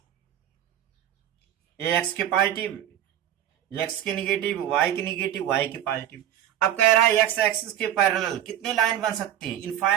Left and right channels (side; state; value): left; quieter; 11.2 dB